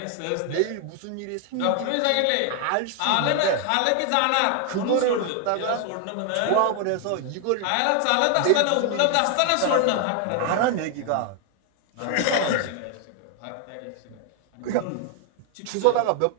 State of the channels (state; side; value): different; both; correlation 0.00